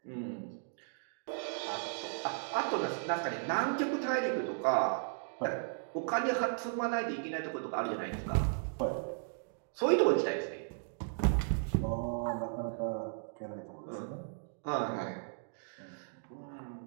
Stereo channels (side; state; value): left; silent; digital silence